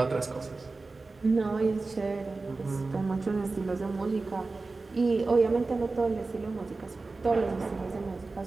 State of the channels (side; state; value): left; quieter; 3.7 dB